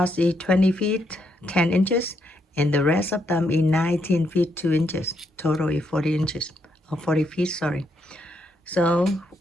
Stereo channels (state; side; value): normal; both; correlation 0.77